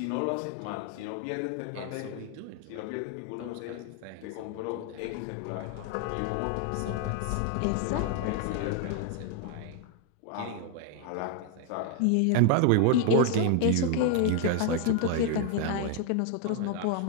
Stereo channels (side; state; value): both; different; correlation 0.00